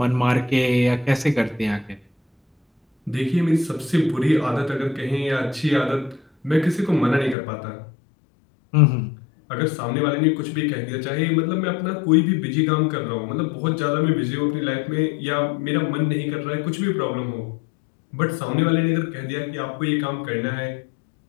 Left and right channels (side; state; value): right; drops out; at 7.4 s